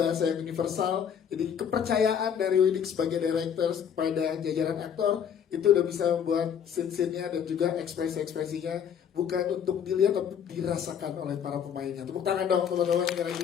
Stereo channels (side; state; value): right; quieter; 8.1 dB